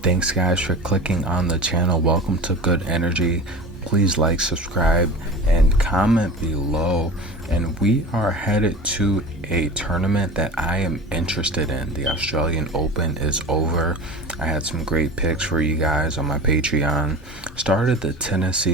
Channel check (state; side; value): normal; both; correlation 0.35